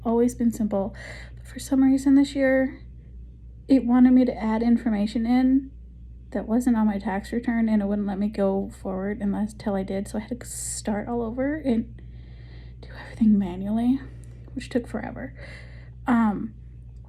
always been simple. But for some reason this year, it wanted me to add information in that wasn't on my tax return, and it wouldn't let me go forward until I did. So I had to start all over and do everything manually, which took forever.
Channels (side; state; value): both; identical; correlation 1.00